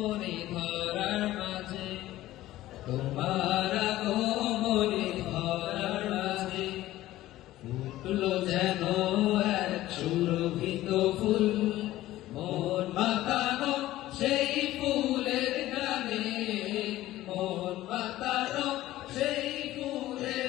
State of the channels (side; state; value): right; quieter; 15.5 dB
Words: धरार माझे तुम्हारा गोमनी धरार माझे ফুটলো যেন এক সুরভিত ফুল মন মাতানো সেই ফুলের গানে মন মাতানো সেই